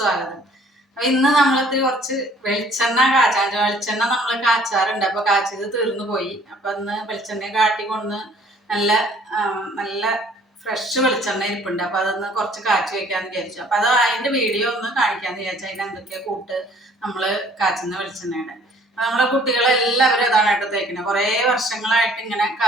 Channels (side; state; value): both; normal; correlation 0.57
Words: അപ്പൊ ഇന്ന് നമ്മളിത്തിരി കുറച്ച് വെളിച്ചെണ്ണ കാച്ചാൻ വെളിച്ചെണ്ണ നമ്മൾ കാച്ചാറുണ്ട്. അപ്പൊ കാച്ചത് തീർന്നു പോയി. അപ്പൊ ഇന്ന് വെളിച്ചെണ്ണ കാട്ടിക്കൊന്ന് നല്ല നല്ല ഫ്രഷ് വെളിച്ചെണ്ണ ഇരിപ്പുണ്ട്. അപ്പൊ അതൊന്ന് കുറച്ച് കാച്ചി വെക്കാന്ന് വിചാരിച്ചു. അപ്പൊ അത് അതിന്റെ വീഡിയോ ഒന്ന് കാണിക്കാന്ന് വിചാരിച്ചു. അതിന് എന്തൊക്കെയാ കൂട്ട് നമ്മള് കാച്ചുന്ന വെളിച്ചെണ്ണയുടെ. അപ്പൊ നമ്മളെ കുട്ടികളെല്ലാവരും അതാണ് കേട്ടോ തേക്കുന്നത്. കുറേ വർഷങ്ങളായിട്ട് ഇങ്ങനെ